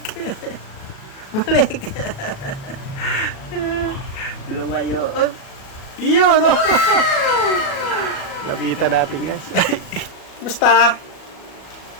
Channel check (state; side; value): late; right; 37 ms